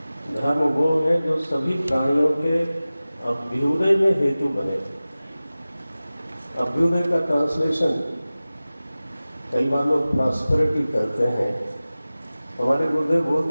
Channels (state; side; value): inverted; both; correlation -0.97